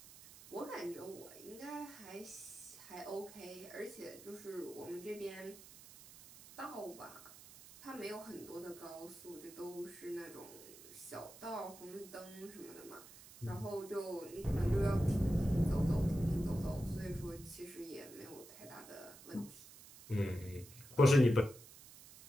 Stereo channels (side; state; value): right; noise; hiss, 18 dB below the sound